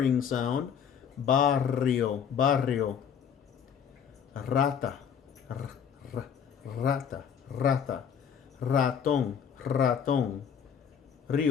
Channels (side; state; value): right; quieter; 7.7 dB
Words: sound. Barrio, barrio. Rata, r, r, rata, rata. Ratón, ratón.